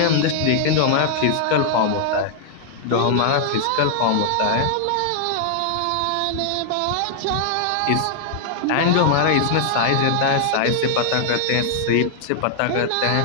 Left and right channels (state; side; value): different; both; correlation 0.00